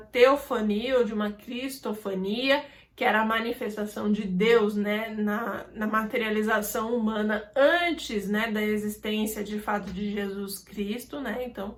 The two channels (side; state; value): both; identical; correlation 1.00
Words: ou de uma cristofania, que era a manifestação de Deus, né, na materialização humana antes, né, da existência de fato de Jesus Cristo, né? Então,